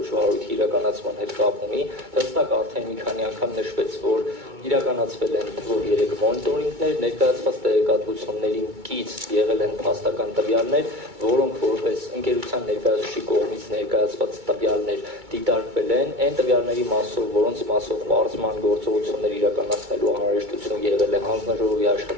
վարույթի իրականացման հետ կապ ունի։ Հստակ արդեն մի քանի անգամ նշվեց, որ իրականացվել են թվով 3 մոնիտորինգներ, ներկայացված տեղեկատվություններին կից եղել են փաստական տվյալներ, որոնք որպես ընկերության ներկայացուցիչի կողմից ներկայացված տվյալներ դիտարկվել են, այն տվյալների մասով, որոնց մասով պարզման գործողություններ իրականացնելու անհրաժեշտություն եղել է, հանձնաժողովի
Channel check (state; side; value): late; left; 2.2 ms